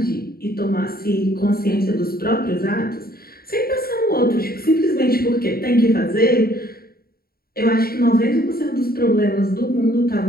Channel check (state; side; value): late; right; 0.44 ms